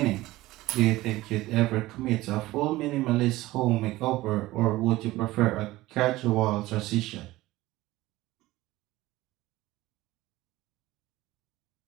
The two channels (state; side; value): quieter; left; 17.8 dB